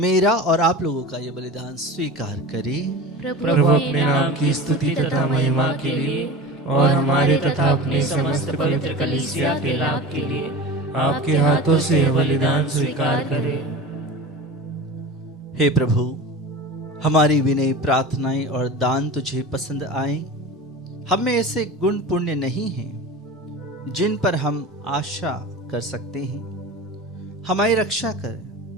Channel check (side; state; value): both; normal; correlation 0.32